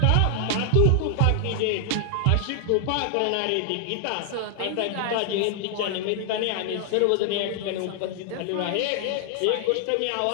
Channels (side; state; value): both; different; correlation 0.00